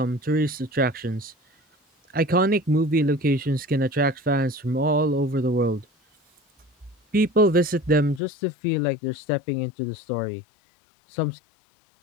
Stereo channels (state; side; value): drops out; right; at 8.2 s